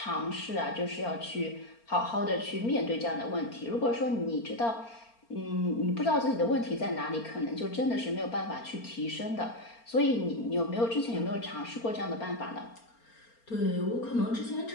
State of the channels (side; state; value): right; late; 4.3 ms